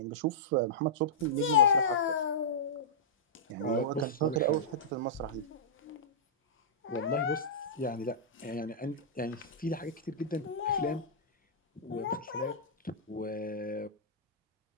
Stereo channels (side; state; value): both; normal; correlation -0.14